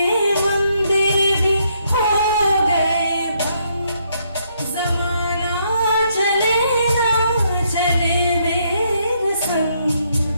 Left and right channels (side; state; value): both; inverted; correlation -0.73